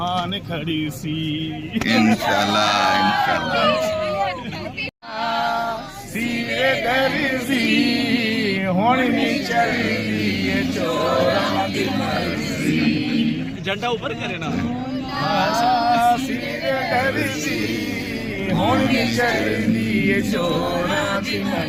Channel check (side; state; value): both; identical; correlation 1.00